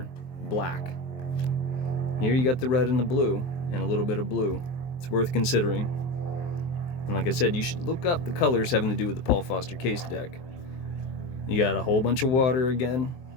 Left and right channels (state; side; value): late; right; 23 ms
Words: black. Here you got the red and the blue, and a little bit of blue. It's worth considering. And like I said, you should look up the colors having to do with the Paul Foster Case deck. You got a whole bunch of water again,